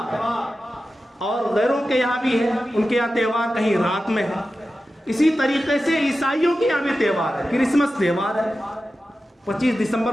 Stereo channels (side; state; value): both; normal; correlation 0.93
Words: اور غیروں کے یہاں بھی ہے, ان کے یہاں تہوار کہیں رات میں ہے. اسی طریقے سے عیسائیوں کے یہاں بھی تہوار ہے. کرسمس تہوار ہے, 25